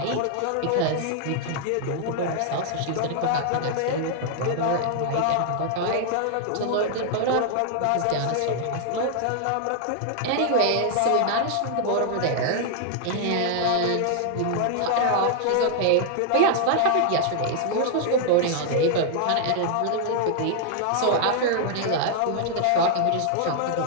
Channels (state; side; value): different; both; correlation 0.00